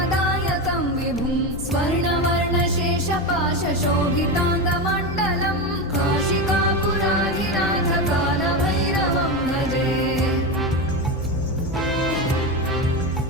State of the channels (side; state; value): left; noise; hum, 11 dB below the sound